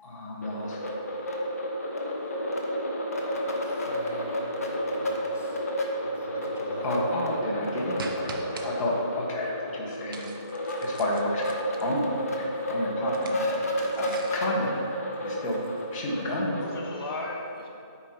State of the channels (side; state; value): both; inverted; correlation -0.55